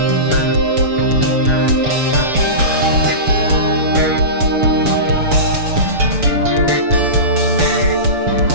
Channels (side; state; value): left; late; 6.9 ms